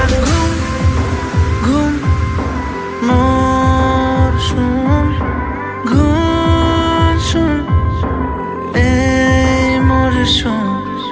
ঘুম ঘুম মোর শুন ঘুম শুন এই মোর শুন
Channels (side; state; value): both; identical; correlation 1.00